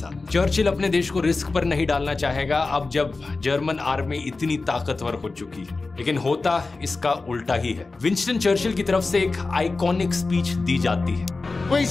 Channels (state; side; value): quieter; right; 3.7 dB